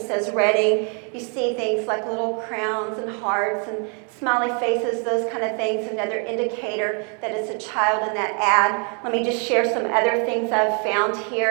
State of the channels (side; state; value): left; quieter; 38.4 dB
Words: says Redding. You see things like little crowns and hearts and smiley faces, those kind of things, another indicator that it's a child in that ad. Let me just share some other things I've found